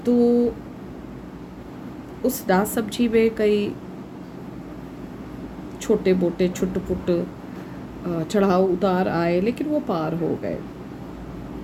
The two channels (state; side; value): identical; both; correlation 1.00